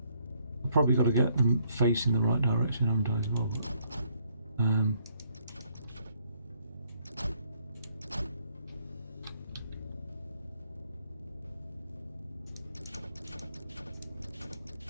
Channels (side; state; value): both; inverted; correlation -0.69